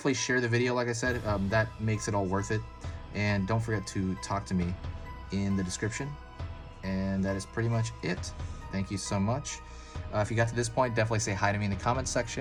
share the video, like I said. That makes it all worth it. And don't forget to talk to me in the description. And that is pretty much it. Thank you so much. If you got to this point, definitely say hi to me in the comments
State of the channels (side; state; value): both; identical; correlation 1.00